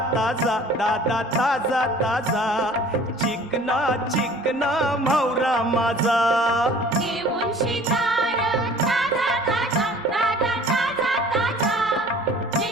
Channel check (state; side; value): normal; both; correlation 0.49